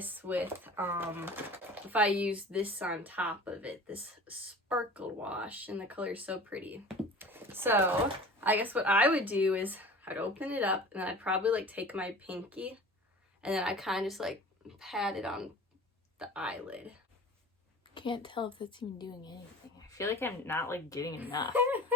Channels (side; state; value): both; normal; correlation 0.41